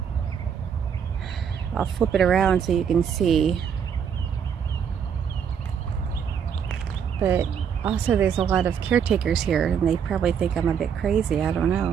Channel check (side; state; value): left; quieter; 7.6 dB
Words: I'll flip it around so you can see. But also there's a lot of caretakers here and they probably think I'm a bit crazy. I don't